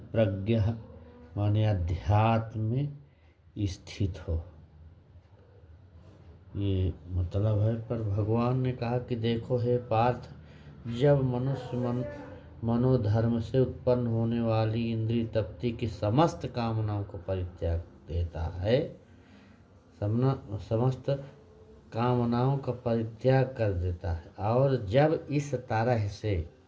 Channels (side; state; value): both; identical; correlation 1.00